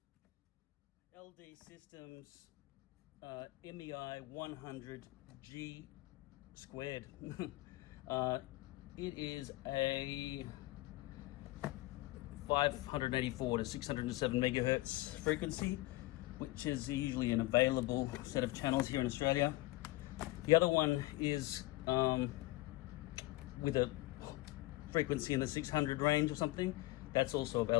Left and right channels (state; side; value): quieter; right; 19.7 dB